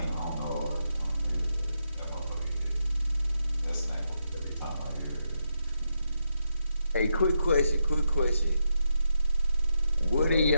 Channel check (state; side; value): inverted; both; correlation -0.83